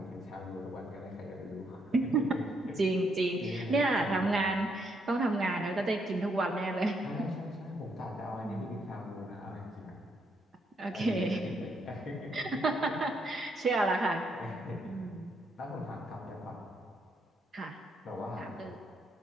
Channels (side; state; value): both; normal; correlation 0.74